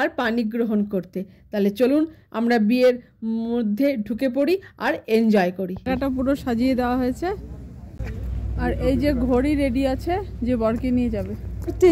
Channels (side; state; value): both; identical; correlation 1.00